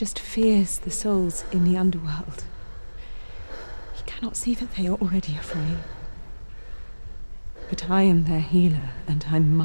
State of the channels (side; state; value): both; inverted; correlation -1.00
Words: fears the souls in the underworld. He cannot see that they are already afraid. But I am their healer, and I